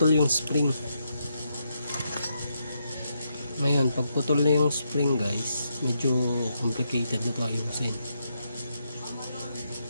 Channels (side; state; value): both; inverted; correlation -0.80